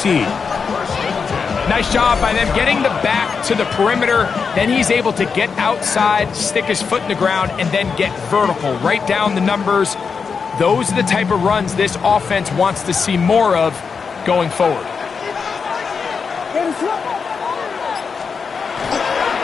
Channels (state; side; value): quieter; right; 5.6 dB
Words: Nice job by them getting the back to the perimeter. Then he's able to get outside, stick his foot in the ground, and then get vertical right down the numbers. Those are the type of runs this offense wants to see more of going forward.